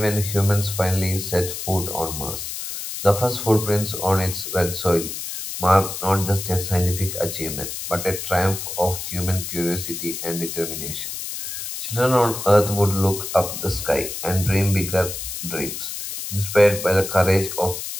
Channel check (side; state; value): left; noise; hiss, 6 dB below the sound